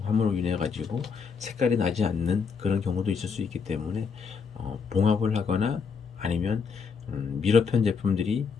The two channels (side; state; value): right; quieter; 5.7 dB